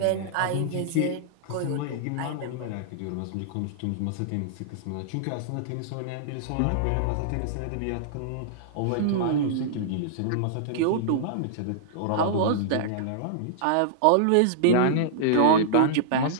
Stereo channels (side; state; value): both; different; correlation -0.02